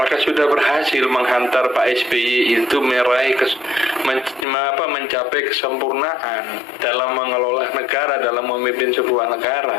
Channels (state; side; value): drops out; right; at 4.5 s